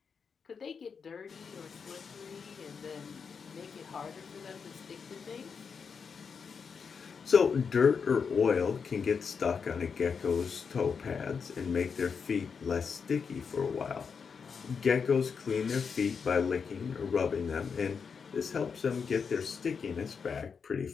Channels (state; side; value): quieter; right; 5.9 dB